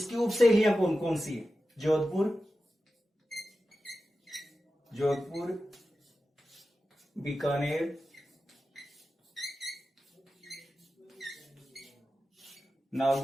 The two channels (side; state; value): both; normal; correlation 0.93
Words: उप शैलियां कौन कौन सी है? जोधपुर, बीकानेर,